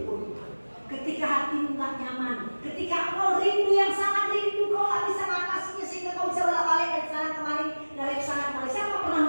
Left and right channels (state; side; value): inverted; both; correlation -1.00